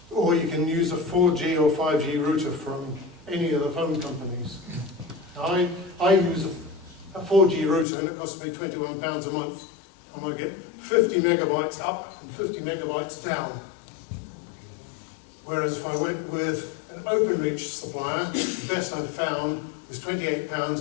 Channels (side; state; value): right; drops out; at 7.9 s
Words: Or you can use a 4G or 5G router from any of the phone companies. Now, I use a 4G router and it costs me £21 a month, and I get 50 megabytes up and 50 megabytes down. Whereas if I went with an OpenReach supplier, the best I've found was £28